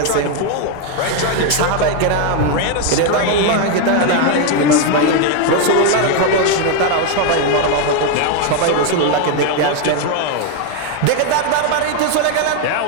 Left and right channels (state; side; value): different; both; correlation 0.01